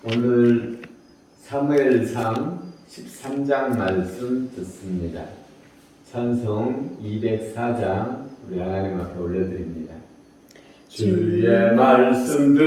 오늘 사무엘상 13장 말씀 듣습니다. 찬송 204장 우리 하나님 앞에 올려드립니다. 주의 말씀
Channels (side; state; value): both; identical; correlation 1.00